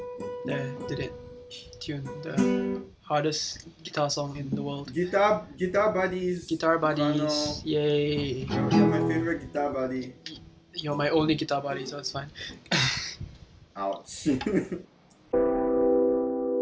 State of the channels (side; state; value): both; identical; correlation 1.00